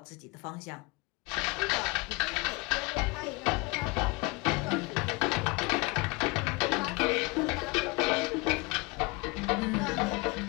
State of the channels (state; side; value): quieter; right; 26.2 dB